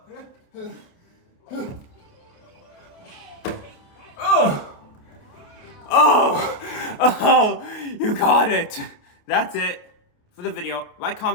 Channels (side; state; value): right; late; 28 ms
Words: Oh, you got it. That's it for the video. Like,